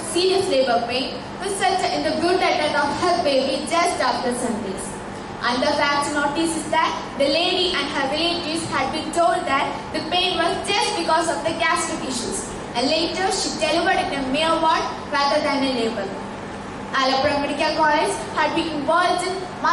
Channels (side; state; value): both; identical; correlation 1.00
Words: serious labor pain resulted in the brutal death of her baby just after Sundays. And the fact to notice is that the lady and her relatives had been told that the pain was just because of the gastric issues, and later she delivered in a mere ward rather than a labor. Alappuzha Medical College had been involved in